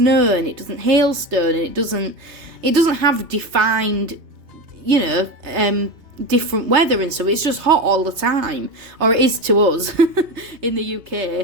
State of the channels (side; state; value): left; late; 3.3 ms